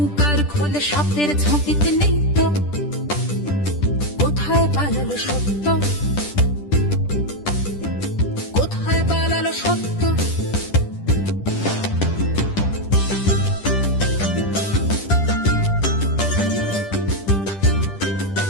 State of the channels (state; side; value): late; right; 10 ms